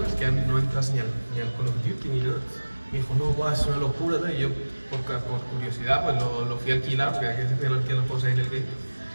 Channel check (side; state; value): both; inverted; correlation -1.00